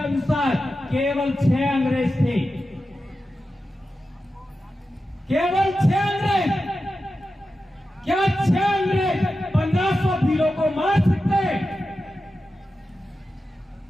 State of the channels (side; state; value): both; normal; correlation 0.91